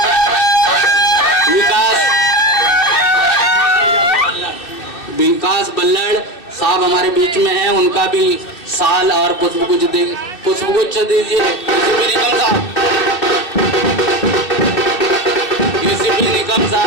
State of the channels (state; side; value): late; right; 2.6 ms